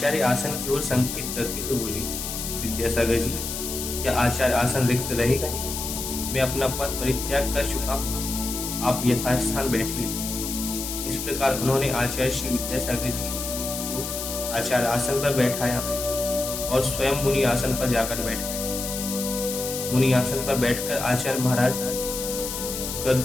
आसन की ओर संकेत करते हुए बोले, विद्यासागर जी, क्या आचार्य आसन रिक्त रहेगा? मैं अपना पद परित्याग कर चुका हूँ, आप यथास्थान बैठिए। इस प्रकार उन्होंने आचार्य श्री विद्यासागर जी को आचार्य आसन पर बैठाया और स्वयं मुनि आसन पर जाकर बैठ गए। मुनि आसन पर बैठकर आचार्य महाराज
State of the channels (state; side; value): noise; left; hiss, 5 dB below the sound